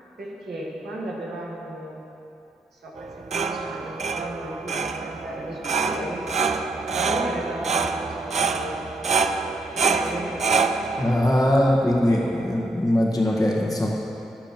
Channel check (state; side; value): normal; both; correlation 0.77